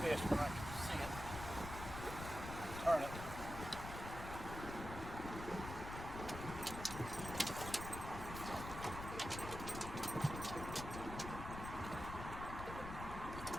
when I can see it. Turn it.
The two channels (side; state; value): left; noise; rumble, 7 dB below the sound